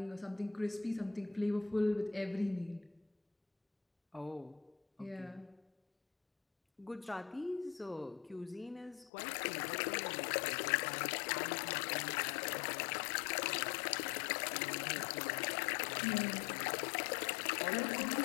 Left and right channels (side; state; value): right; drops out; at 9.1 s